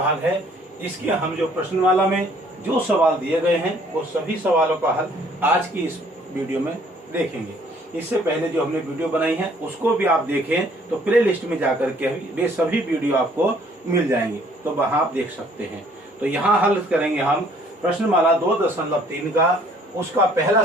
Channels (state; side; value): normal; both; correlation 0.59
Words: है। इसके हम जो प्रश्नमाला में जो सवाल दिए गए हैं वो सभी सवालों का हल आज की इस वीडियो में देखेंगे। इससे पहले जो हमने वीडियो बनाई है उसको भी आप देखें तो प्ले लिस्ट में जाकर के वे सभी वीडियो आपको मिल जाएंगे, तो वहां आप देख सकते हैं। तो यहाँ हल करेंगे हम प्रश्नमाला 2.3 का। उसका पहला